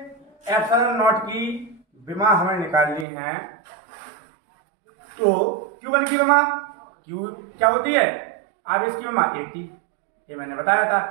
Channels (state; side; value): drops out; left; at 3.1 s